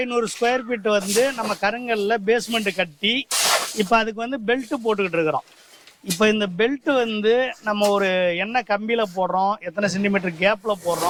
ஸ்கொயர் ஃபீட் வந்து நம்ம கருங்கல்ல பேஸ்மெண்ட் கட்டி இப்போ அதுக்கு வந்து பெல்ட்டு போட்டுக்கிட்டு இருக்கிறோம். இப்போ இந்த பெல்ட்டு வந்து நம்ம ஒரு என்ன கம்பியில் போடுறோம், எத்தனை சென்டிமீட்டர் கேப்பில்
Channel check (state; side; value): identical; both; correlation 1.00